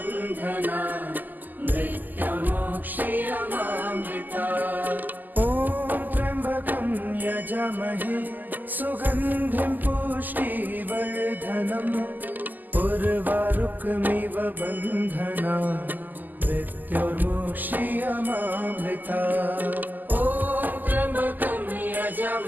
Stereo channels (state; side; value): late; left; 0.085 ms